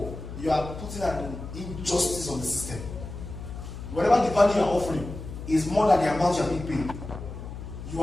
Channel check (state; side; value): noise; left; hum, 10 dB below the sound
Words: you are putting an injustice on the system. Whatever the value you are offering is more than the amount you are being paid, you